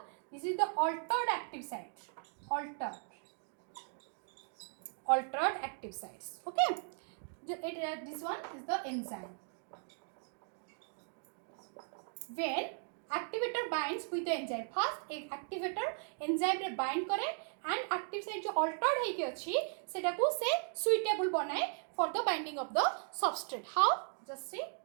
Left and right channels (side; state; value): left; silent; 53 dB below the other